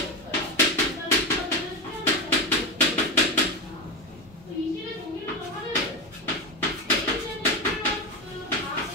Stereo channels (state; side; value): normal; both; correlation 0.16